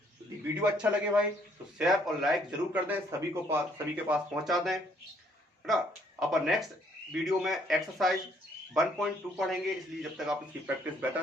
यदि वीडियो अच्छा लगे भाई तो शेयर और लाइक जरूर कर दें, सभी के पास पहुंचा दें, है ना। अपन नेक्स्ट वीडियो में एक्सरसाइज 1.2 पढ़ेंगे, इसलिए जब तक आप इसकी प्रैक्टिस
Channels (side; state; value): both; normal; correlation 0.66